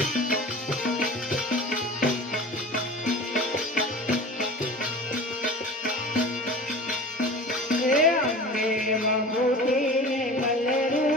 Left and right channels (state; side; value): normal; both; correlation 0.37